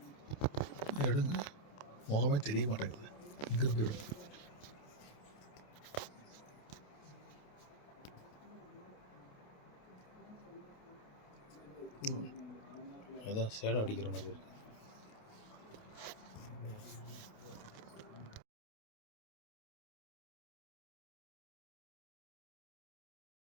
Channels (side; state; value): right; late; 28 ms